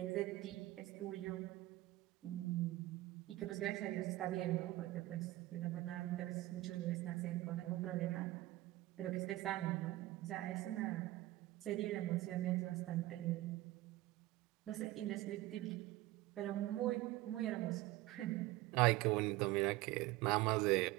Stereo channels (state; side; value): quieter; left; 17.5 dB